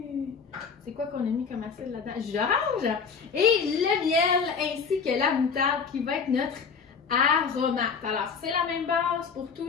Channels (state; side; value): quieter; right; 5.8 dB